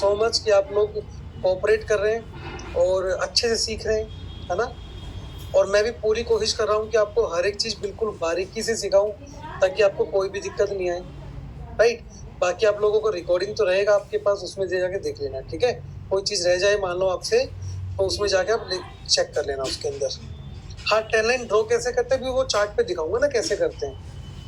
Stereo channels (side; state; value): both; identical; correlation 1.00